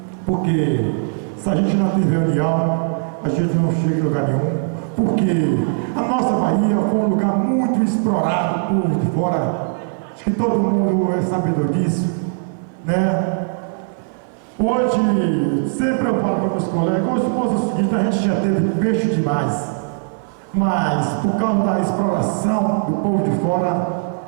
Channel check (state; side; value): silent; left; 58 dB below the other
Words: porque se a gente não tiver união, a gente não chega em lugar nenhum. Porque a nossa Bahia foi um lugar muito explorado por de fora. Acho que todo mundo é sabedor disso, né? Hoje, sempre eu falo para meus colegas, hoje é o seguinte, a gente já teve peixe demais, mas por causa da exploração do povo de fora,